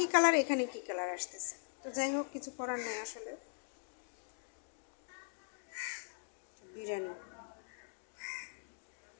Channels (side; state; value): right; silent; digital silence